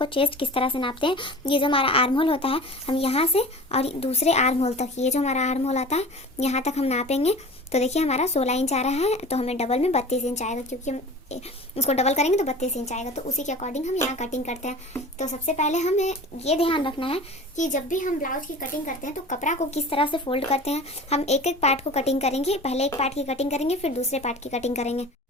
चेस्ट किस तरह से नापते हैं। ये जो हमारा आर्म होल होता है, हम यहाँ से और दूसरे आर्म होल तक, ये जो हमारा आर्म होल आता है यहाँ तक हम नापेंगे। तो देखिए, हमारा 16 इंच आ रहा है, तो हमें डबल में 32 इंच आएगा, क्योंकि हम उसको डबल करेंगे तो 32 इंच आएगा। तो उसी के अकॉर्डिंग हम यहाँ कटिंग करते हैं। तो सबसे पहले हमें ये ध्यान रखना है कि जब भी हम ब्लाउज की कटिंग करते हैं तो कपड़ा को किस तरह से फोल्ड करते हैं। हम एक एक पार्ट को कटिंग करेंगे। पहले एक पार्ट की कटिंग करेंगे, फिर दूसरे पार्ट की कटिंग करेंगे।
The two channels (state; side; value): normal; both; correlation 0.39